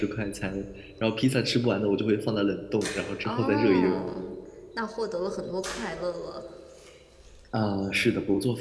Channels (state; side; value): identical; both; correlation 1.00